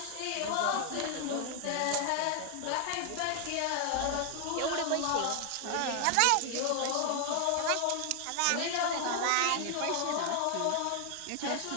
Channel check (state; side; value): different; both; correlation 0.00